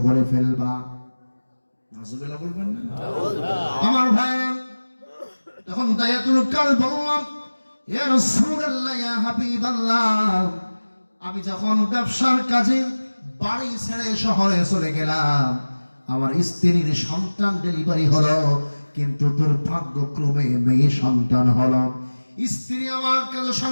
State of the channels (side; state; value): both; inverted; correlation -1.00